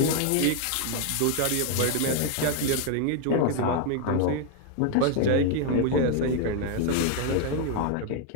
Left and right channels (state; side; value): different; both; correlation 0.01